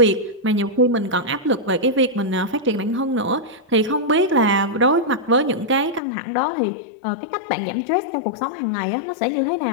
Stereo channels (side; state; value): right; drops out; at 6.0 s